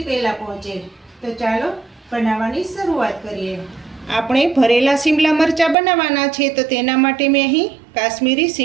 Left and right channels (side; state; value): left; drops out; at 5.8 s